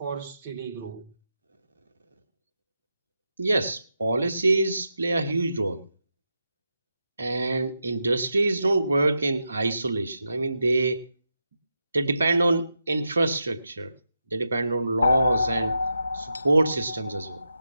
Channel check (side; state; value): both; inverted; correlation -0.87